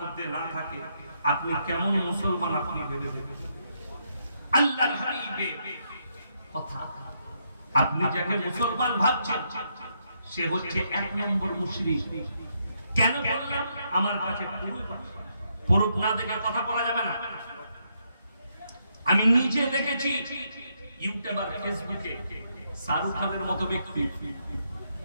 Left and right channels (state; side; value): inverted; both; correlation -0.77